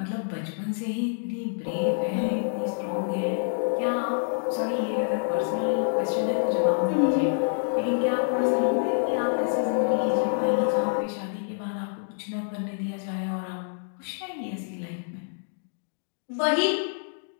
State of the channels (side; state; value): right; silent; digital silence